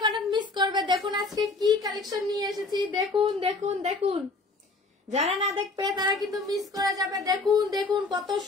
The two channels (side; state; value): right; quieter; 3.5 dB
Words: অনেক মিস করবে। দেখুন আজকে কি কালেকশন নিয়ে এসেছি, দেখুন দেখুন দেখুন, যারা না দেখবে তারা কিন্তু মিস করে যাবে। দেখুন দেখুন কত